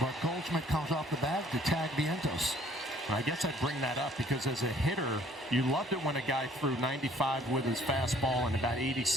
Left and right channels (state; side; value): normal; both; correlation 0.58